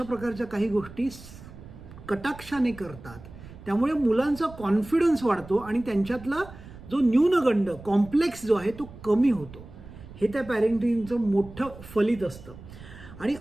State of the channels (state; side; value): noise; right; rumble, 17 dB below the sound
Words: प्रकारच्या काही गोष्टी कटाक्षाने करतात. त्यामुळे मुलांचा कॉन्फिडन्स वाढतो आणि त्यांच्यातला जो न्यूनगंड, कॉम्प्लेक्स जो आहे तो कमी होतो. हे त्या पॅरेंटिंगचं मोठं फलित असतं. आणि